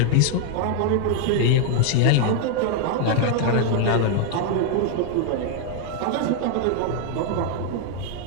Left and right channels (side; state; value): both; different; correlation 0.00